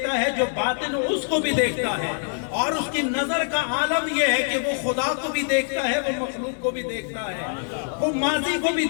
ہے، جو باطن ہو اس کو بھی دیکھتا ہے، اور اس کی نظر کا عالم یہ ہے کہ وہ خدا کو بھی دیکھتا ہے، وہ مخلوق کو بھی دیکھتا ہے، وہ ماضی کو بھی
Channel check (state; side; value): silent; right; digital silence